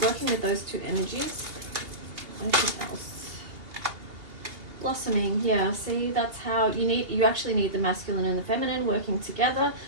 working with those two energies. Anything else? Blossoming. Yeah, see, that's how you actually need the masculine and the feminine working together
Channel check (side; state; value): left; late; 2.8 ms